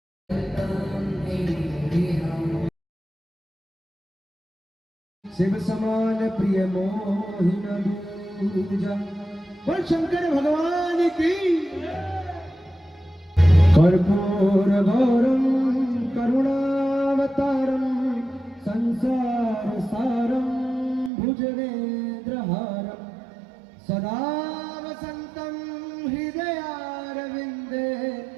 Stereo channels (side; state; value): left; drops out; at 21.1 s